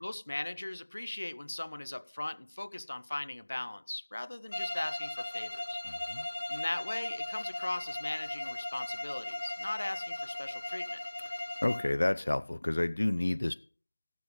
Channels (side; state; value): both; inverted; correlation -1.00